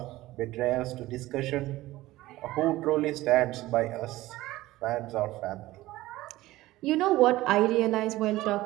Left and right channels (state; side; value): quieter; left; 17.2 dB